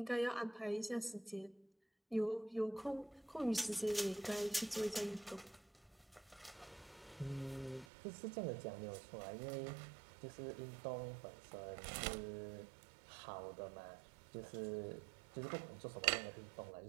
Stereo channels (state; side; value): drops out; left; at 7.9 s